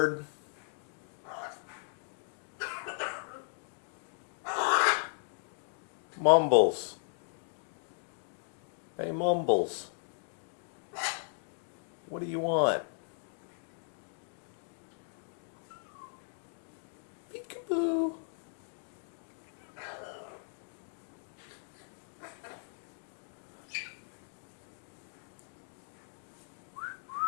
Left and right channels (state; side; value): silent; right; digital silence